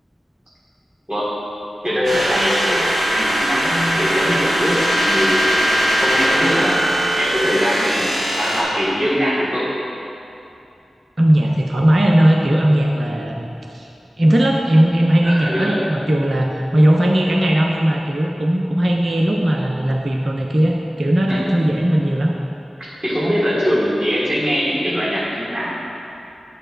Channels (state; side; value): normal; both; correlation 0.96